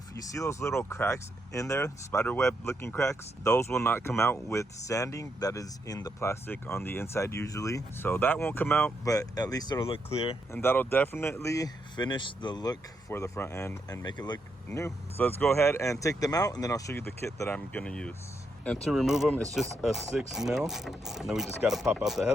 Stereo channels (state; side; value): normal; both; correlation 0.80